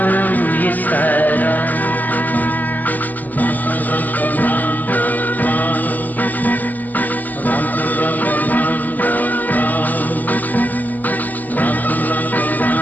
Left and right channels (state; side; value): late; right; 0.083 ms